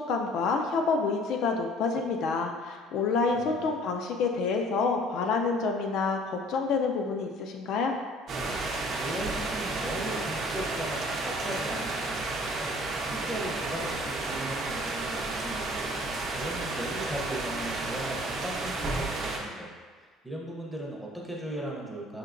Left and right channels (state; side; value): normal; both; correlation 0.52